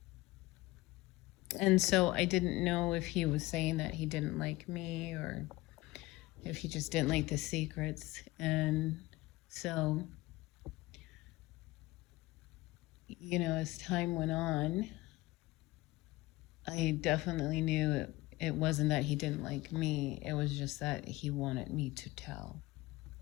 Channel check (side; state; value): right; quieter; 19.4 dB